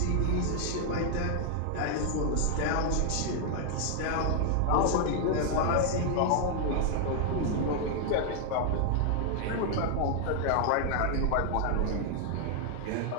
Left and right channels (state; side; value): different; both; correlation 0.00